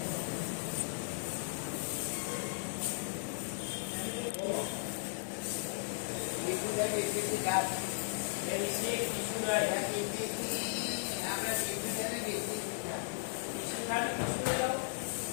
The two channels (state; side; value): silent; right; 54 dB below the other